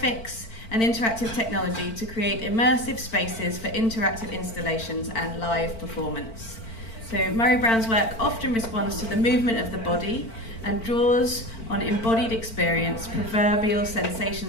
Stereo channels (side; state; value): right; late; 4.5 ms